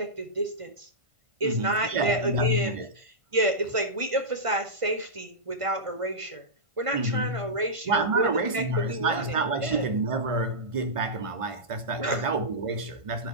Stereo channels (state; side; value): late; left; 1.5 ms